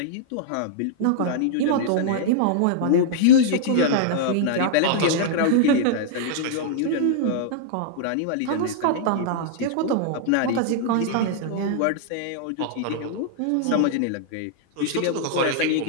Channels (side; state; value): both; different; correlation -0.01